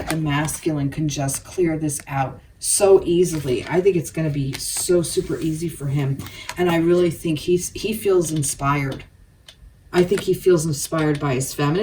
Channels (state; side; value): identical; both; correlation 1.00